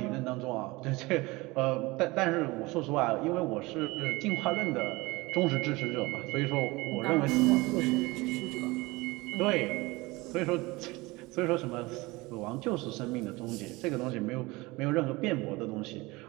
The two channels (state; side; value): quieter; left; 22.4 dB